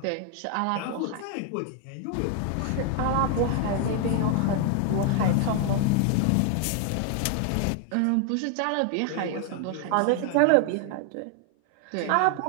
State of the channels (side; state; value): both; different; correlation 0.00